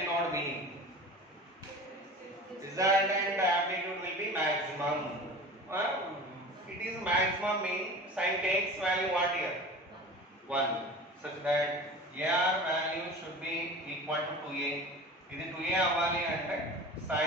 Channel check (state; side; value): normal; both; correlation 0.36